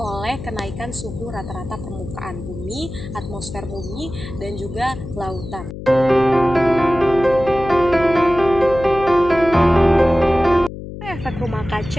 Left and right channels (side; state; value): left; noise; hum, 11 dB below the sound